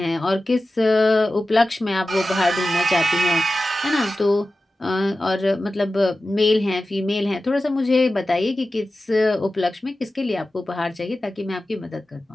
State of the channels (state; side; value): normal; both; correlation 0.94